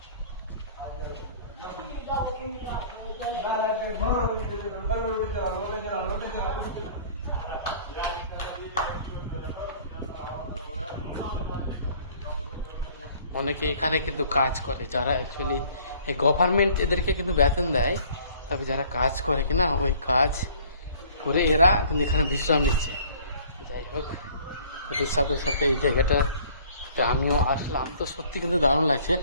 অনেকে এখানে কিন্তু কাজ করে, যারা অ্যাকচুয়ালি গভর্নমেন্ট এদেরকে কিন্তু বেতন দেয়, তবে যারা কাজ করে কিনা ওই কাজ করে এরা কিন্তু এখানে বিশ্রাম নিচ্ছে। যাই হোক, ওদের সাথে সাথে এই জায়গাটাতে আমিও আসলাম, তো সত্যি কিন্তু দারুণ লাগছে।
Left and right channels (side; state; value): both; inverted; correlation -0.53